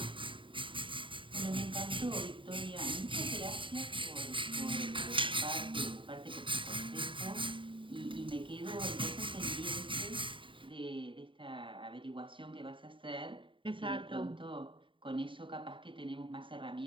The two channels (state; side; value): late; left; 0.25 ms